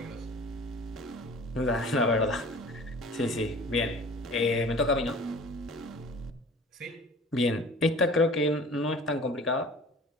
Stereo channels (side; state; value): both; normal; correlation 0.44